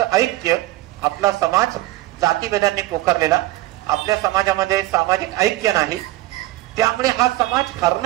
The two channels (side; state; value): left; quieter; 17.4 dB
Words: ऐक्य. आपला समाज जातीभेदांनी पोखरलेला, आपल्या समाजामध्ये सामाजिक ऐक्य नाही, त्यामुळे हा समाज